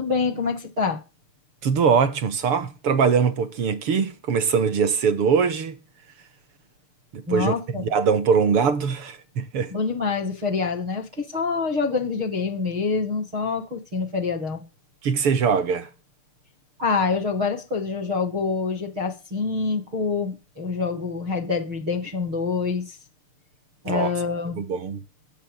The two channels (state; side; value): late; left; 7.0 ms